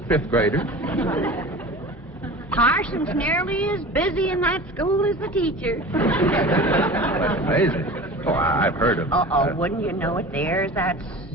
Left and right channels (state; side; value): normal; both; correlation 0.37